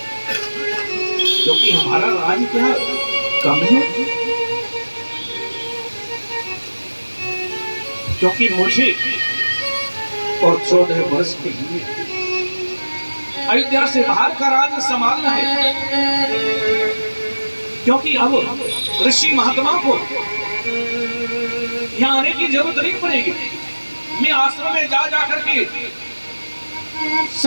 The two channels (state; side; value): inverted; both; correlation -1.00